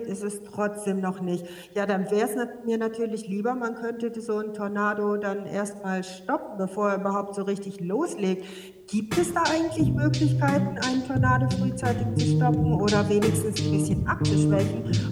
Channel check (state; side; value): identical; both; correlation 1.00